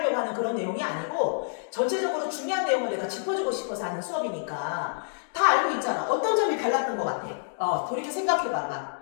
하는 그런 내용이 아니고 전체적으로 중요한 내용을 내가 짚어주고 싶어서 하는 수업이니까 다 알고 있잖아. 어떤 점이 달랐던 것 같아? 돌이켜 생각해봐봐.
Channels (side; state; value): right; silent; digital silence